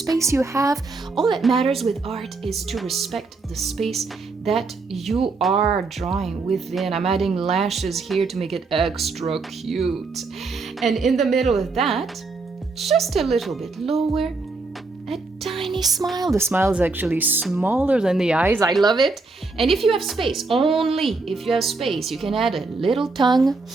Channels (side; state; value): left; quieter; 3.9 dB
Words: you have. All that matters with art is to respect the space that you are drawing within. I'm adding lashes here to make it extra cute. And in the middle of that, just a little bit lower, a tiny smile. The smile is actually smaller than the eyes. I love it. And if you have space, only if you have space, you can add a little tongue.